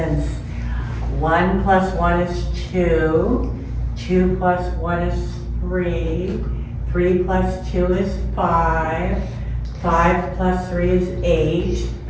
1 plus 1 is 2, 2 plus 1 is 3, 3 plus 2 is 5, 5 plus 3 is 8,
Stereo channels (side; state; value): both; identical; correlation 1.00